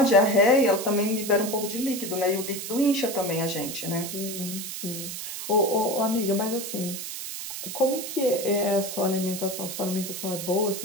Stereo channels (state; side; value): noise; right; hiss, 7 dB below the sound